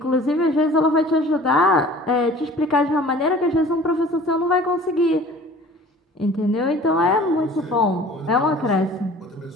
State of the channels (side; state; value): both; normal; correlation 0.46